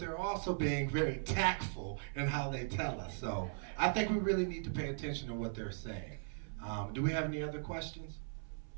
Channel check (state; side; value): silent; left; 52 dB below the other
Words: also being very tactful in how they tell us. So I think we really need to pay attention to what they're saying. Do we have any other questions?